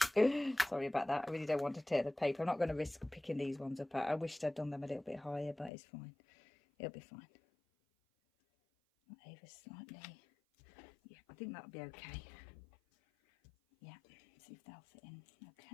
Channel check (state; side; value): drops out; right; at 5.7 s